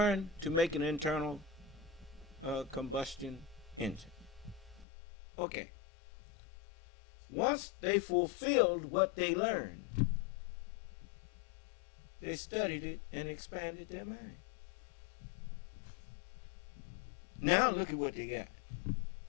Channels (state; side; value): drops out; right; at 4.9 s